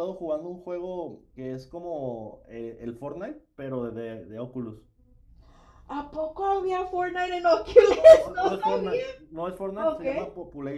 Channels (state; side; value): identical; both; correlation 1.00